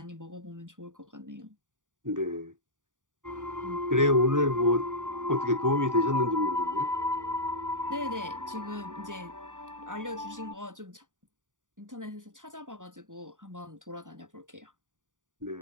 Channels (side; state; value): left; late; 0.87 ms